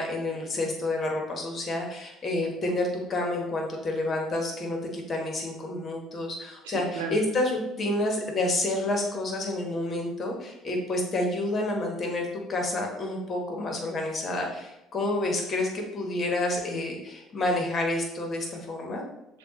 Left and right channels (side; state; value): both; normal; correlation 0.58